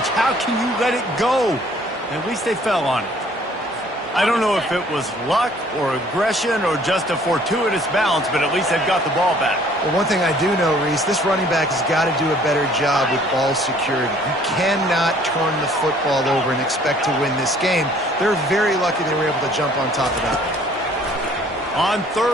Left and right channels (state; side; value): normal; both; correlation 0.57